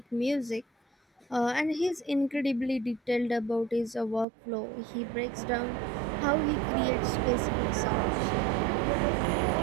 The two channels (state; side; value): drops out; left; at 4.2 s